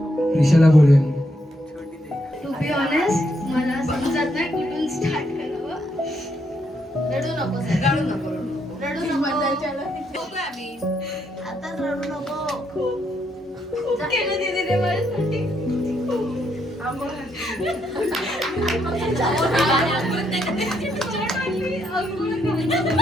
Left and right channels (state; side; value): normal; both; correlation 0.76